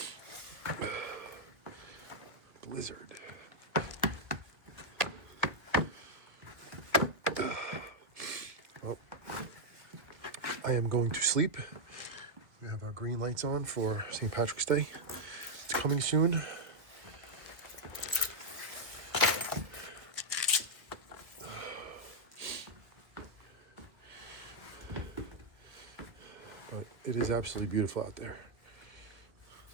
Blizzard. Well, I am going to sleep. We have our green lights on for St. Patrick's Day. It's coming soon. But it is absolutely beautiful out there.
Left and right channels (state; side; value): late; left; 1.1 ms